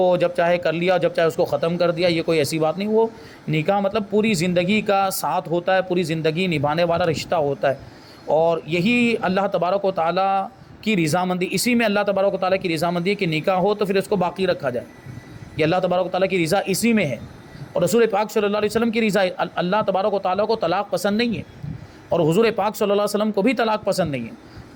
جب چاہے کر لیا، جب چاہے اس کو ختم کر دیا، یہ کوئی ایسی بات نہیں. وہ نکاح مطلب پوری زندگی کا ساتھ ہوتا ہے، پوری زندگی نبھانے والا رشتہ ہوتا ہے، اور یہی اللہ تبارک و تعالیٰ کی رضامندی، اسی میں اللہ تبارک و تعالیٰ کی رضامندی ہے کہ نکاح ہو تو پھر اس کو باقی رکھا جائے. یہ اللہ تبارک و تعالیٰ کی رضا اسی میں ہے، اور رسول پاک صلی اللہ علیہ وسلم کی رضا. اللہ تبارک و تعالیٰ کو طلاق پسند نہیں ہے، اور حضور پاک صلی اللہ علیہ وسلم کو بھی طلاق پسند نہیں ہے.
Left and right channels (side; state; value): both; identical; correlation 1.00